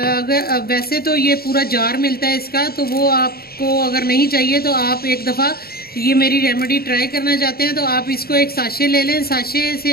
वैसे तो ये पूरा जार मिलता है इसका, तो वो आपको अगर नहीं चाहिए तो आप एक दफ़ा ये मेरी रेमेडी ट्राई करना चाहते हैं तो आप इसको एक साशे ले लें। साशे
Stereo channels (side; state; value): right; late; 0.44 ms